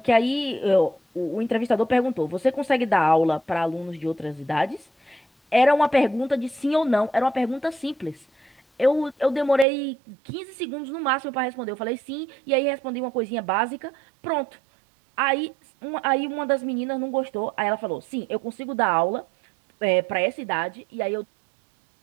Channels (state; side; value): drops out; left; at 9.7 s